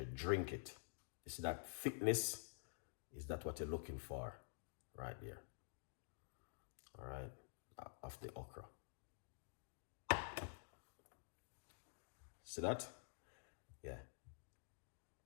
drink it. You see that thickness? Is that what you're looking for right there? All right, of the okra. See that? Yeah.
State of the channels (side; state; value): right; silent; digital silence